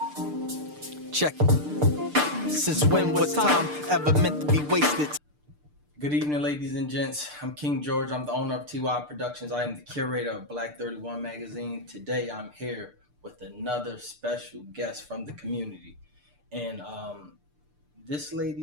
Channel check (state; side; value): late; left; 6.7 ms